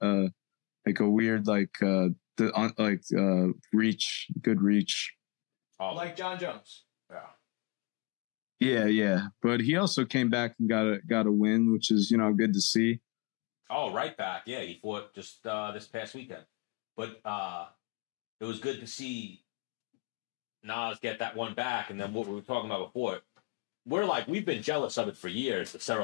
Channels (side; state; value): right; quieter; 28.0 dB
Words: weird reach, good reach. Oh. Like John Jones. Yeah. But he also came back and got a win, which is, you know, good to see. Oh, right back. Yeah, he fought just this past weekend. But it was good to see Nas get that one back. And then what we were talking about before, we've been jealous of it for years, the